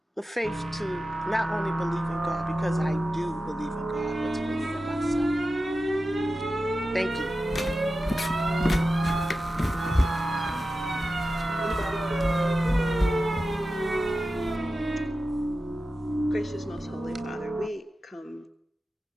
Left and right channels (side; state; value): both; normal; correlation 0.93